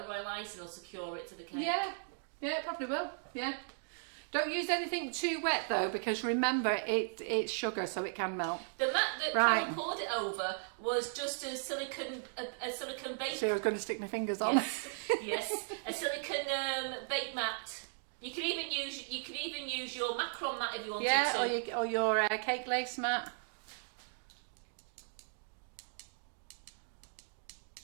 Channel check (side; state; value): left; silent; digital silence